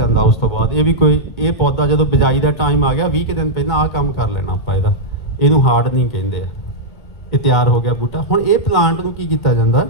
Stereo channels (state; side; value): late; right; 2.1 ms